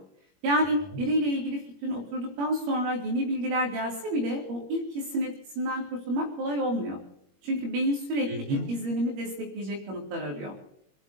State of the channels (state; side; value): late; left; 21 ms